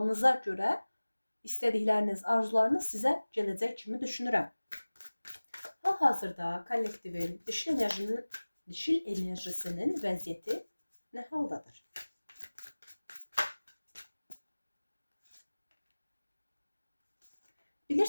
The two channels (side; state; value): both; inverted; correlation -1.00